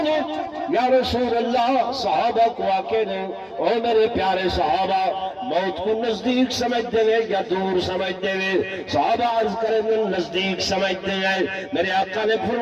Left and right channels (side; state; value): both; identical; correlation 1.00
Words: نے یا رسول اللہ، صحابہ کو آکے نے او میرے پیارے صحابہ، موت کو نزدیک سمجھتے ہیں یا دور سمجھتے ہیں؟ صحابہ عرض کریں نزدیک سمجھتے ہیں. میرے آقا نے